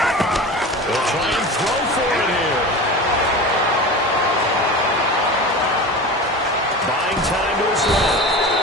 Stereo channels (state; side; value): normal; both; correlation 0.31